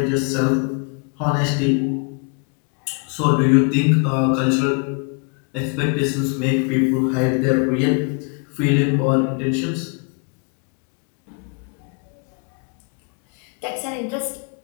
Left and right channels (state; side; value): quieter; right; 35.7 dB